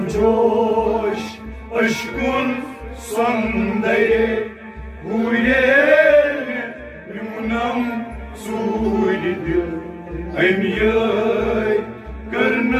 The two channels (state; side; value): identical; both; correlation 1.00